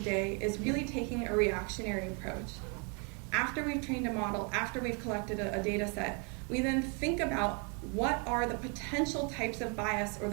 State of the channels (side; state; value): left; quieter; 34.6 dB